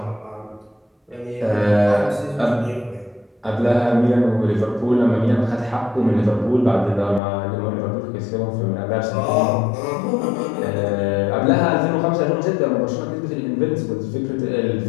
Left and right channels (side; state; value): right; drops out; at 7.2 s